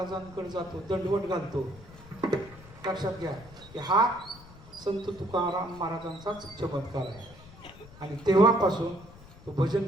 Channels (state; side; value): noise; left; rumble, 19 dB below the sound